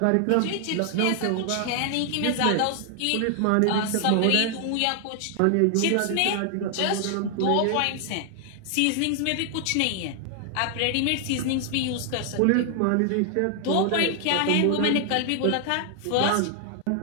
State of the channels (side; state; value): both; different; correlation 0.00